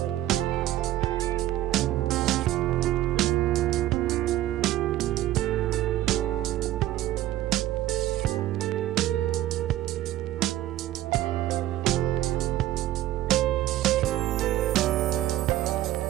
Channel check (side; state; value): left; quieter; 14.5 dB